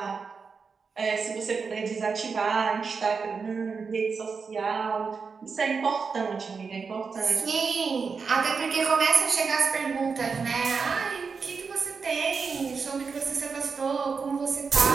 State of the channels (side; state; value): left; quieter; 5.2 dB